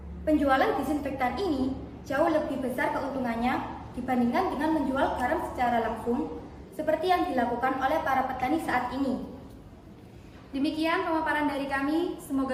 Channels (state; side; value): identical; both; correlation 1.00